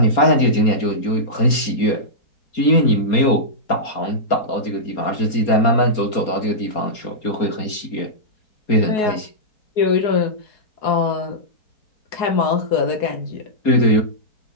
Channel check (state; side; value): late; right; 4.3 ms